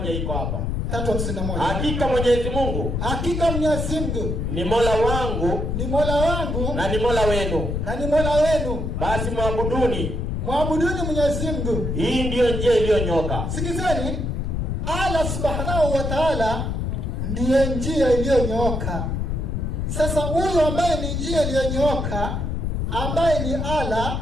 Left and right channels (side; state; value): left; noise; rumble, 1 dB below the sound